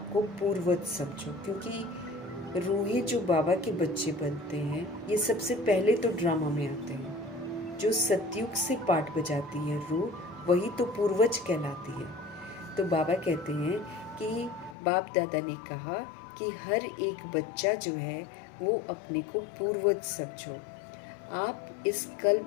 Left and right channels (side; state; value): right; drops out; at 14.8 s